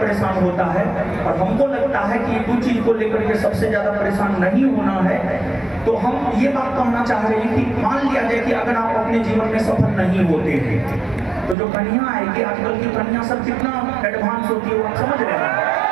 होता है। और हमको लगता है कि ये दो चीज को लेकर के सबसे ज्यादा परेशान नहीं होना है। तो हम ये बात कहना चाह रहे हैं कि मान लिया जाए कि अगर आप अपने जीवन में सफल नहीं होते हैं, तो जो कन्या आएगी, आजकल की कन्या सब कितना एडवांस होती है वो आप समझ रहे हैं।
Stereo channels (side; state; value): left; drops out; at 11.6 s